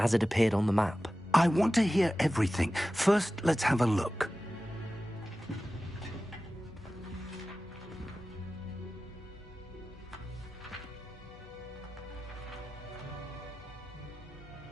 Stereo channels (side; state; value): both; normal; correlation 0.95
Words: it appeared on the map. I want to hear everything. First, let's have a look.